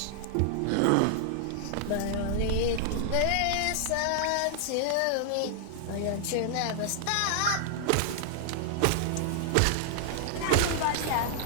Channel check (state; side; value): different; both; correlation 0.00